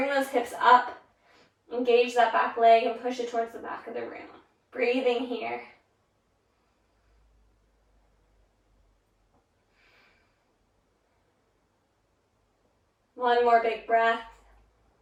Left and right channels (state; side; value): identical; both; correlation 1.00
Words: those hips up. Engage that back leg and push it towards the back of the room. Breathing here. One more big breath.